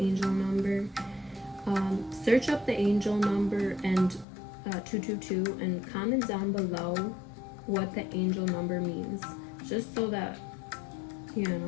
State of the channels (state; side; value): drops out; right; at 4.2 s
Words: number. Search up the angel number and 222 and comment down below what the angel number means. Just so that, you